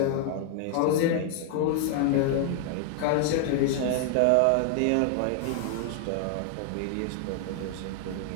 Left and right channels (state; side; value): different; both; correlation 0.00